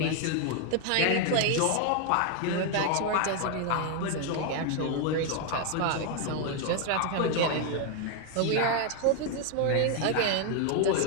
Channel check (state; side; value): different; both; correlation 0.01